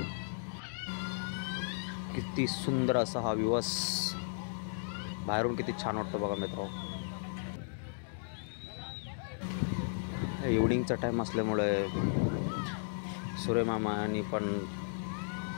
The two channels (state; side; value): silent; right; digital silence